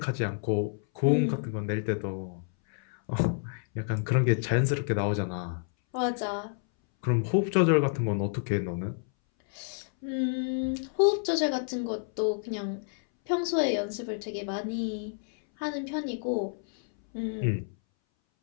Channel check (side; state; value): right; silent; 58 dB below the other